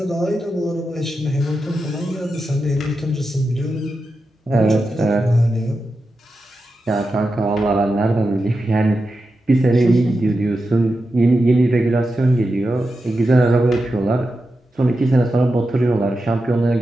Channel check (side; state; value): both; normal; correlation 0.90